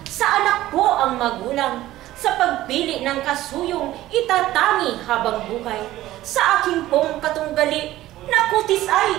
sa anak ko ang magulang, sa pagpili ng kasuyong itatangi habang buhay. Sa aking pong katunggali, na kutis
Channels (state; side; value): quieter; left; 15.3 dB